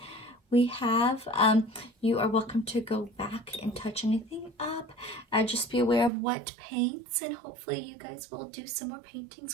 we have. You are welcome to go back and touch anything up. Just be aware of wet paints, and hopefully you guys will do some more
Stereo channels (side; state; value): left; drops out; at 6.1 s